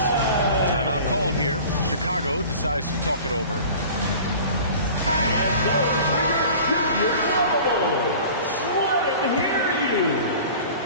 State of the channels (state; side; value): inverted; both; correlation -0.42